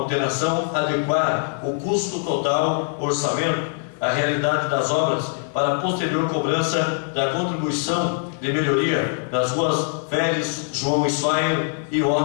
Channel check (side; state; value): right; silent; 63 dB below the other